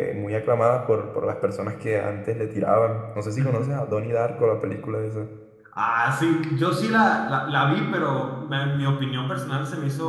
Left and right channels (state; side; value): identical; both; correlation 1.00